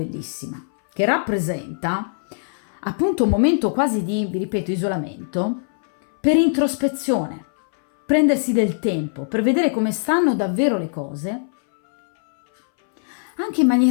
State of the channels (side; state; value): right; silent; 62 dB below the other